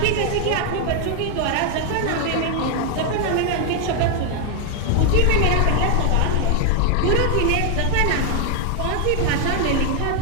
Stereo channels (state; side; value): different; both; correlation 0.00